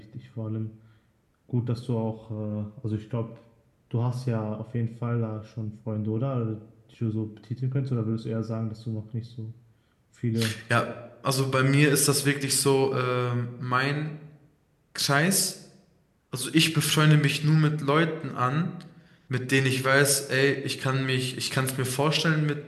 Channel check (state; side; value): identical; both; correlation 1.00